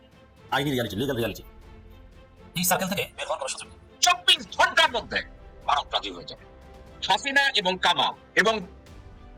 আইনি রিয়ালিটি, লিগাল রিয়ালিটি। এই সার্কেল থেকে বের হওয়ার কোনো সুযোগ নেই। 24 ঘন্টার মধ্যে ভারত রাজি হয়ে যাবে। হাসিনা এবং কামাল এবং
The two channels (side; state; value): both; identical; correlation 1.00